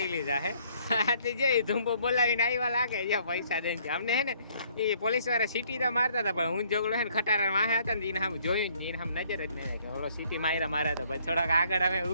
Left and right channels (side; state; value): both; inverted; correlation -0.63